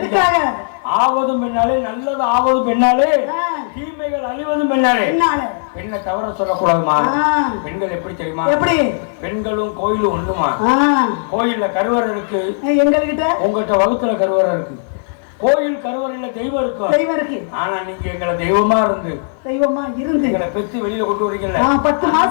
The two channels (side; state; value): right; silent; 55 dB below the other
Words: ஆவதும் பெண்ணாலே, நல்லது ஆவதும் பெண்ணாலே, தீமைகள் அழிவதும் பெண்ணாலே. பெண்ணை தவற சொல்லக்கூடாதுமா. பெண்கள் எப்படி தெரியுமா? எப்படி? பெண்களும் கோயிலும் ஒண்ணுமா? கோயில்ல கருவறை இருக்கு, எங்ககிட்ட உங்ககிட்ட வகுத்துல கருவறை இருக்கு. கோயில் கருவறையில தெய்வம் இருக்கும். தெய்வம் இருக்கு. ஆனா நீங்க எங்களை தெய்வமா இருந்து எங்களை பெத்து வெளியில கொண்டு வரீங்கல்ல. 10